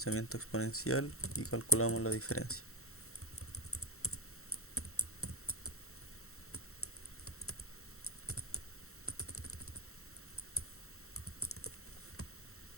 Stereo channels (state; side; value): late; right; 0.63 ms